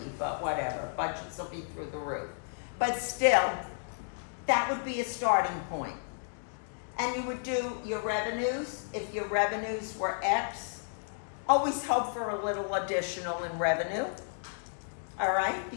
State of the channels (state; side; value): silent; right; digital silence